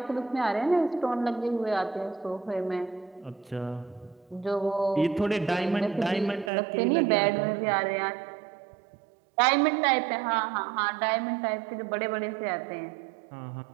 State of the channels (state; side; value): drops out; left; at 6.5 s